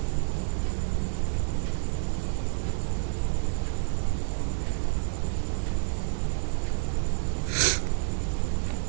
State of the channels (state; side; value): silent; left; digital silence